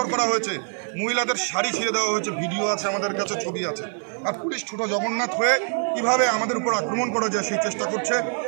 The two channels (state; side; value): silent; left; 59 dB below the other